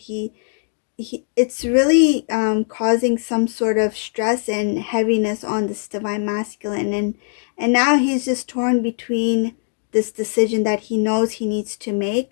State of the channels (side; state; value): right; silent; digital silence